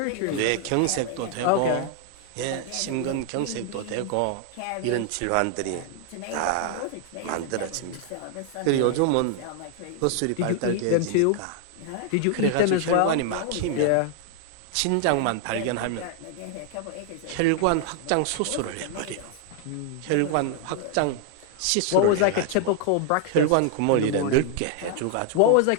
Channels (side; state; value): both; different; correlation 0.00